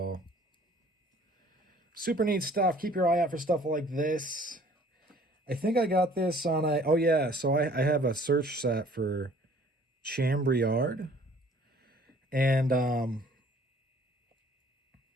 Super neat stuff. Keep your eye out for stuff like this. I think I got this on a... Oh, yeah. So I have a search set for Chambriard. And,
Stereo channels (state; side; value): normal; both; correlation 0.54